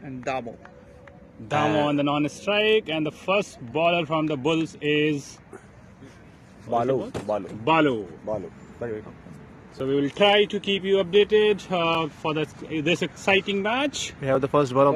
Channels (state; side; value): identical; both; correlation 1.00